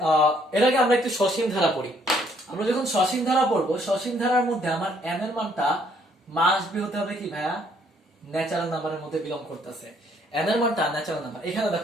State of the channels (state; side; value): normal; both; correlation 0.66